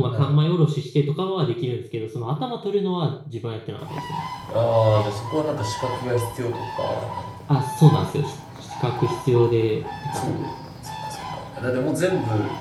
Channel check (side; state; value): both; identical; correlation 1.00